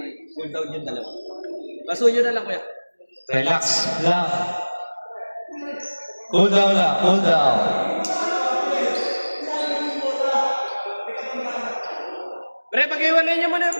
cool down yung dalawa. Basuyo na lang, kuya. Relax lang. Cool down lang. Cool down. Pre, pag-iwalay niyo muna,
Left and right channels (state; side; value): inverted; both; correlation -1.00